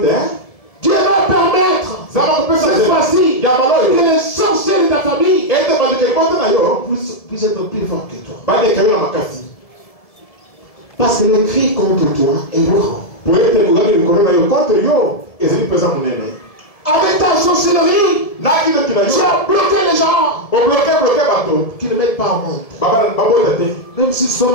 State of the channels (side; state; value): right; late; 1.7 ms